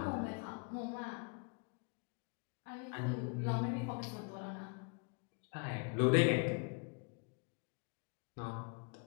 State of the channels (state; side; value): quieter; right; 35.8 dB